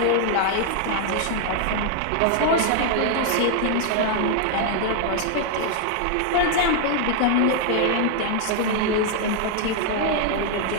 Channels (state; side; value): different; both; correlation 0.00